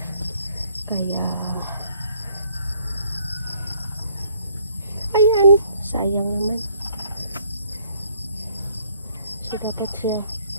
Kaya ayan, sayang naman. So, dapat siya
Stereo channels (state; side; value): inverted; both; correlation -0.64